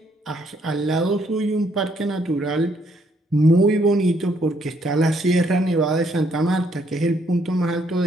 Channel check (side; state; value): both; normal; correlation 0.70